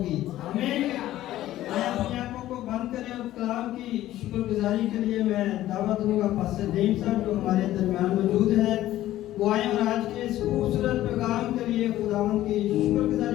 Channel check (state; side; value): quieter; right; 14.3 dB